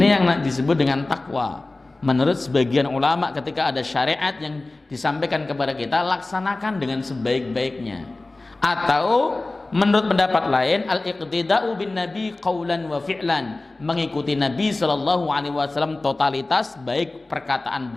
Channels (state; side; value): quieter; right; 3.1 dB